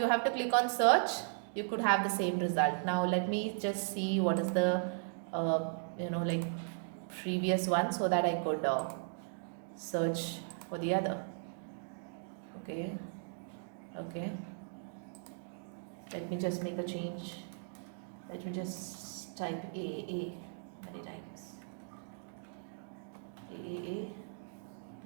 have to click on search. You could have the same result. Now let me just see what is the like previous one, so that I could search for the other. Okay, let me just make a change. Let me just type A many times. A B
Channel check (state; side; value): silent; left; digital silence